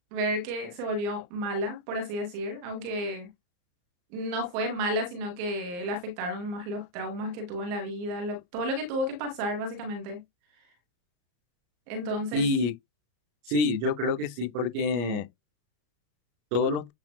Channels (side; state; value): left; late; 34 ms